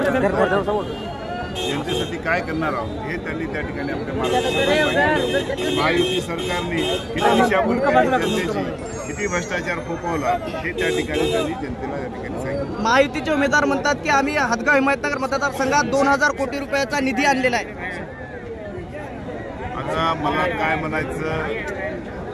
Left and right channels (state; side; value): identical; both; correlation 1.00